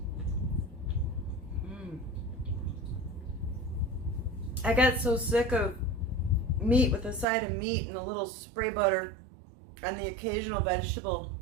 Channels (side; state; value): left; drops out; at 7.2 s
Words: I got so sick of meat with a side of meat and a little spray butter and the occasional vegetable